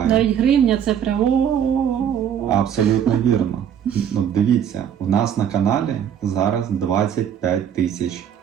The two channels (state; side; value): quieter; left; 8.9 dB